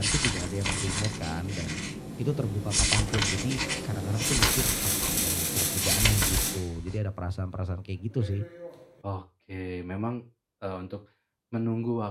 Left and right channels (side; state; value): both; identical; correlation 1.00